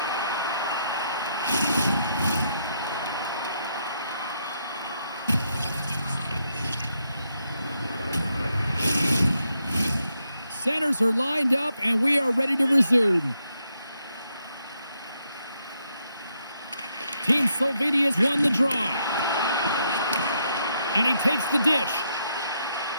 Centers are lined up, and we are ready to resume. Team Slovenia's won the draw. And he takes the dish.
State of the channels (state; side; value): inverted; both; correlation -0.78